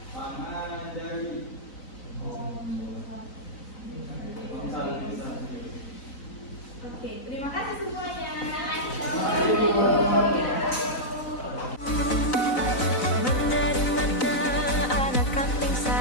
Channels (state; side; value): late; right; 4.0 ms